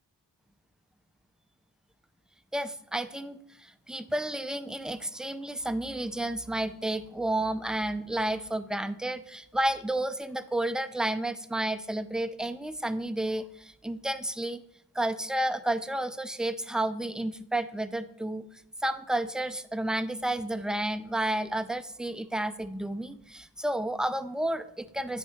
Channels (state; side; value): normal; both; correlation 0.86